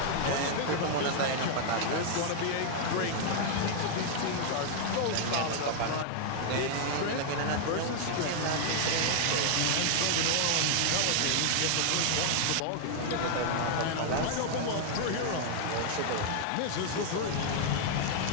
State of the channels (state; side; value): different; both; correlation 0.00